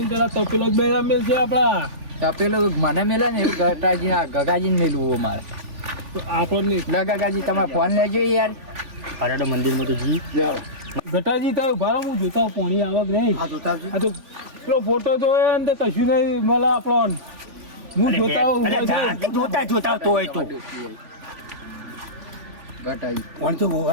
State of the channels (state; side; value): late; left; 3.5 ms